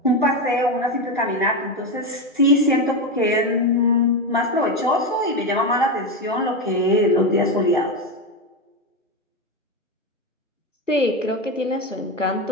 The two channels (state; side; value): normal; both; correlation 0.14